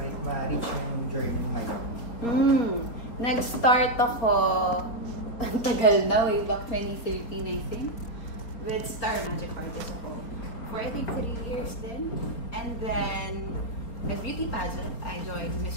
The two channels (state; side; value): late; right; 4.2 ms